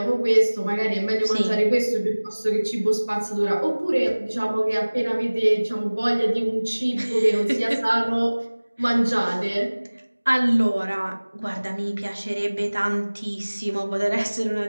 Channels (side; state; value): both; inverted; correlation -1.00